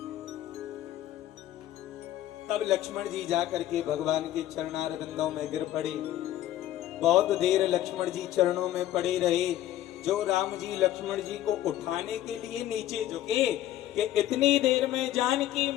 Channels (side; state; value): right; quieter; 13.2 dB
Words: तब लक्ष्मण जी जाकर के भगवान के चरणारविंदों में गिर पड़े। बहुत देर लक्ष्मण जी चरणों में पड़े रहे। जो राम जी लक्ष्मण जी को उठाने के लिए नीचे झुके कि इतनी देर में जानकी